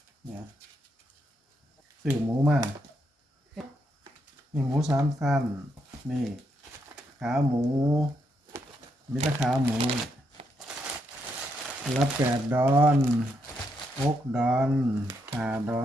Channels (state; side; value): normal; both; correlation 0.79